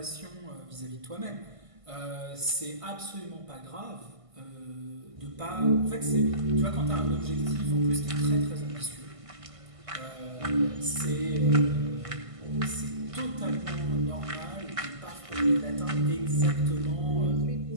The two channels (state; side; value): late; left; 1.5 ms